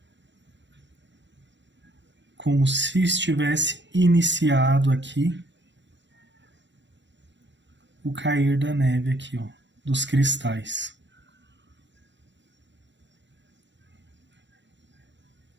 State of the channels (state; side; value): late; left; 0.53 ms